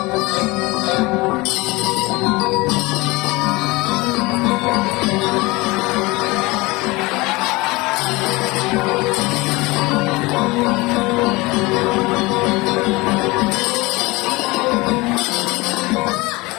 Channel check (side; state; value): right; quieter; 23.0 dB